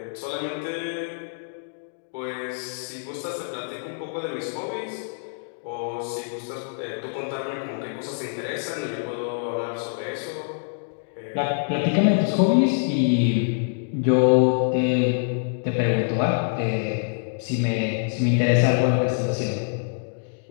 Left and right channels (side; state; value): right; silent; digital silence